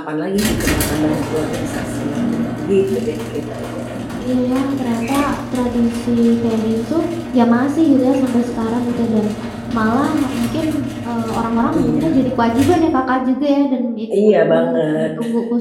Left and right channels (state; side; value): identical; both; correlation 1.00